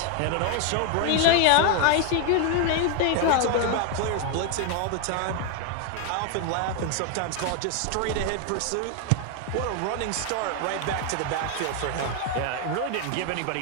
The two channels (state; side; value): different; both; correlation 0.01